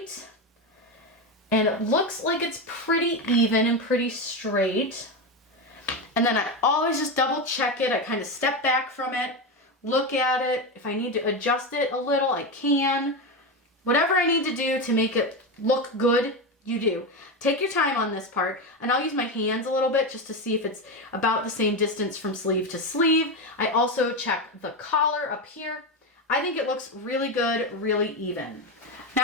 and it looks like it's pretty even and pretty straight. And then I always just double check it. I kind of step back from it, look at it. If I need to adjust it a little, I can. Whatever I need to do to make it look good, you do. Take your time on this part, and I'll use my hands a little bit just to see if it's about the same distance from sleeve to sleeve. I also check the collar up here. I think it looks really good, really even.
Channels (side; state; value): both; normal; correlation 0.15